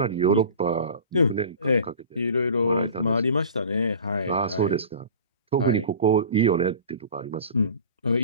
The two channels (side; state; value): both; inverted; correlation -0.38